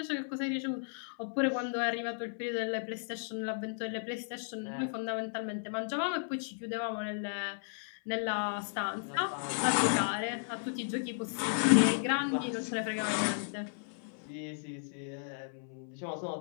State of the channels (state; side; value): silent; right; 55 dB below the other